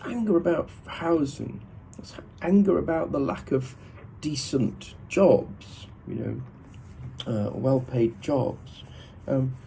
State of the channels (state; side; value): identical; both; correlation 1.00